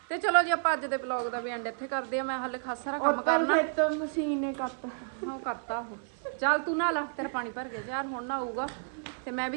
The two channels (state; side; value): silent; left; 57 dB below the other